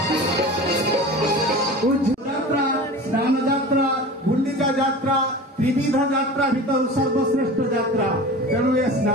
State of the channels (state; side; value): normal; both; correlation 0.35